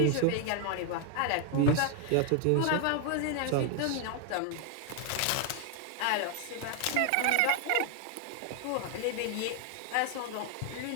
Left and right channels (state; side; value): different; both; correlation 0.00